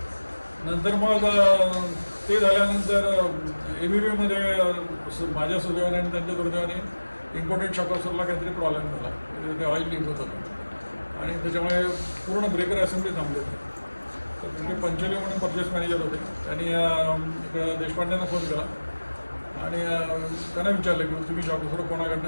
नंतर मग ते झाल्यानंतर ABBमध्ये माझ्या सुदैवाने आणि त्यांच्या दुर्दैवाने इम्पोर्टेड शॉकॉसरला काहीतरी प्रॉब्लेम झाला. ते ऑइल लीक होत होतं आणि त्याच्यामुळे पूर्ण ब्रेकर असेंब्ली थांबली होती. तर तिथे पंचोली म्हणून परचेस मॅनेजर होते. त्यांनी इकडं देशपांड्यांना फोन केला आणि त्यांना विचारलं की तुम्ही शॉकॉसर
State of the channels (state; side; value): inverted; both; correlation -1.00